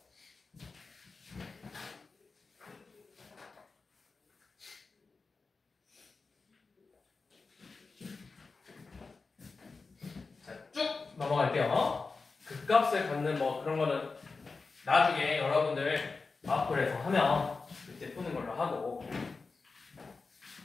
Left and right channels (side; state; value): right; quieter; 4.2 dB